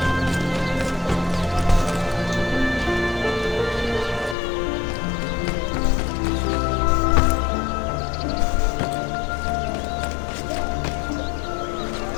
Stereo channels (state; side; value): drops out; right; at 4.4 s